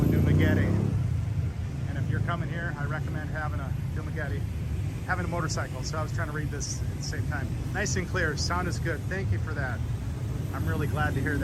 in Dumaguete. And if you're coming here, I recommend having a motorcycle. So I was trying to read this at the same time. Nice and clear, sound is good. Thank you for that. I'm really glad to hear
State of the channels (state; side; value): identical; both; correlation 1.00